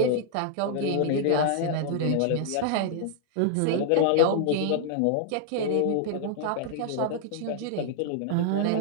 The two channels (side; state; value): both; different; correlation -0.01